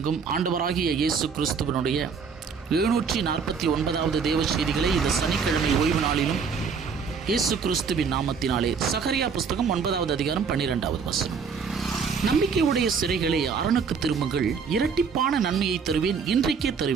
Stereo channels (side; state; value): left; quieter; 5.8 dB